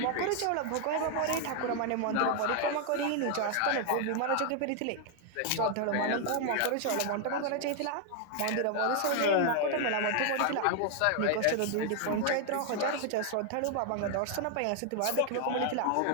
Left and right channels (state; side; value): different; both; correlation 0.00